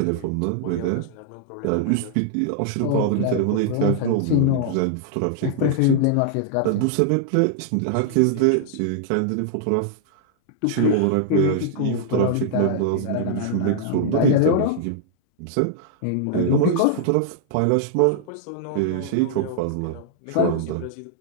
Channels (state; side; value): different; both; correlation -0.01